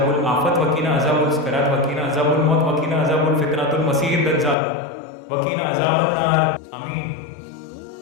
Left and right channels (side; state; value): right; drops out; at 4.5 s